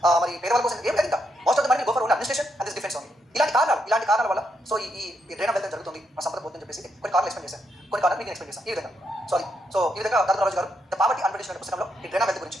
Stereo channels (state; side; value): normal; both; correlation 0.79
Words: మరి పేదవాళ్ళ కోసం ఏం లేదు. ఇంకా most of the money go for only administration and this defence only. ఇలాంటి కారణాల వల్ల సో ఈ డ్రైన్ ఆఫ్ వెల్త్ జరుగుతుంది, మన సంపద పోతుందని చెప్పేసి కొన్ని కారణాలు ఎక్స్ప్లెయిన్ చేశాను. కొన్ని కారణాలు మీకు ఎక్స్ప్లెయిన్ చేశాను ఈ విధంగా. సో ఈ విధంగా దాదాపు రాజు గారు ద పావర్టీ అండ్ బ్రిటిష్ పుస్తకంలో ఈ డ్రైన్ ఆఫ్ వెల్త్ గురించి